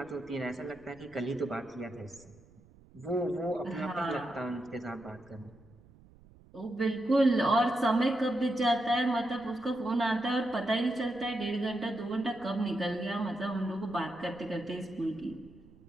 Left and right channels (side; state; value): right; noise; rumble, 25 dB below the sound